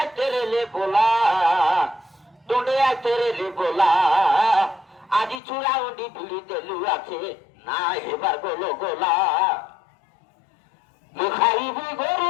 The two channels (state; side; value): drops out; right; at 5.4 s